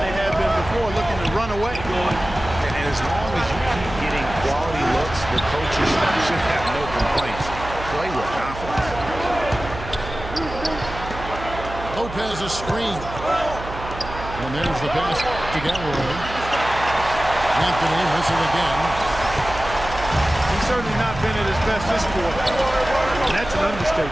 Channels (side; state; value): right; noise; hum, 11 dB below the sound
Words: they have been before, looking to run away. And as long as you keep getting quality looks, the coaches should have no complaints. Play with confidence. Lopez a screen. And there's the pass to Galloway. Anthony missing again. He's certainly not been at his best this quarter. That's an